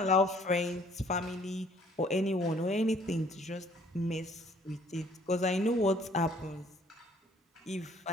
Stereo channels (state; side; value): normal; both; correlation 0.59